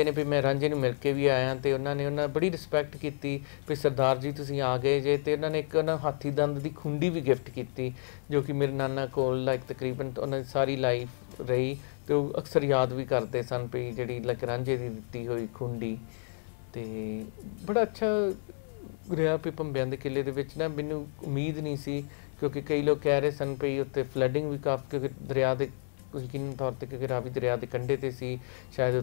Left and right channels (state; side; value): silent; right; digital silence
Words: ਨੇ ਵੀ ਮੈਂ ਰਾਂਝੇ ਨੂੰ ਮਿਲ ਕੇ ਵੀ ਆਇਆ ਅਤੇ ਉਹਨਾਂ ਬੜੀ ਰਿਸਪੈਕਟ ਕੀਤੀ ਵੀ ਸਰਦਾਰ ਜੀ ਤੁਸੀਂ ਆ ਗਏ ਜੇ। ਅਤੇ ਉਹਨਾਂ ਨੇ ਇੱਕ ਹਾਥੀ ਦੰਦ ਦੀ ਖੁੰਡੀ ਵੀ ਗਿਫਟ ਕੀਤੀ ਜੋ ਕਿ ਮੇਰੇ ਨਾਨਾ ਕੋਲ ਲਾਈਕ ਤਕਰੀਬਨ ਉਹਨਾਂ ਦੀ ਸਾਰੀ ਲਾਈਫ ਰਹੀ ਅਤੇ ਉਹ ਅਕਸਰ ਯਾਦ ਵੀ ਕਰਦੇ ਸਨ ਵੀ ਜਿਹੜੀ ਲਾਈਕ ਰਾਂਝੇ ਦੀ ਦਿੱਤੀ ਹੋਈ ਖੁੰਡੀ। ਅਤੇ ਬੜਾ ਅੱਛਾ ਰਿਹਾ ਵੀ ਭੰਬਿਆਂ ਦੇ ਕਿਲੇ ਦੇ ਵਿੱਚ ਨਾ ਮੈਨੂੰ ਉਮੀਦ ਨਹੀਂ ਸੀ, ਕਿਉਂਕਿ ਕਈ ਲੋਕ ਕਹਿ ਰਹੇ ਸਨ ਵੀ ਉੱਥੇ ਫਲੱਡਿੰਗ ਵੀ ਕਾਫੀ, ਕਿਉਂਕਿ ਦਰਿਆ ਦੇ ਯਕੀਨੀ ਤੌਰ 'ਤੇ ਕਿਉਂਕਿ ਰਾਵੀ ਦਰਿਆ ਦੇ ਕੰਢੇ 'ਤੇ ਸੀ, ਸ਼ਾਇਦ